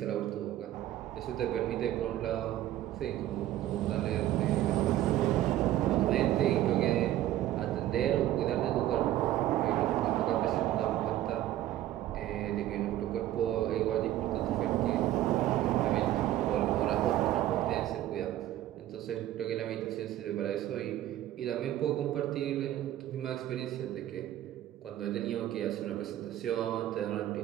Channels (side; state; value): left; quieter; 13.5 dB